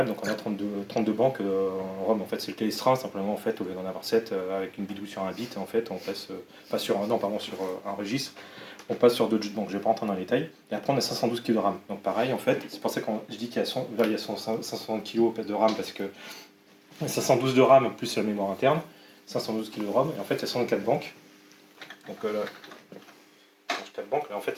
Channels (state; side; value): identical; both; correlation 1.00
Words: donc on a 32 banques en ROM. En fait, c'est le Télestra, simplement, en fait, au lieu d'en avoir 7 avec une bidouille sur un bit, en fait, on passe, pas sur un registre, on passe sur d'autres banques. Je ne vais pas rentrer dans les détails. Et après, on a 512 kg de RAM. Donc pareil, en fait, c'est pour ça que je dis qu'il y a 560 kg de RAM, parce que 512 de RAM plus la mémoire interne, 512 kg de ROM, et en fait, il y a 64 banques. Donc là, banques, là, en fait,